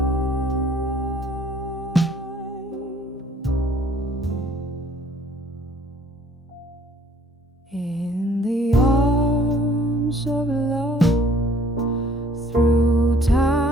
In the arms of love, through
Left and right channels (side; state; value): both; normal; correlation 0.57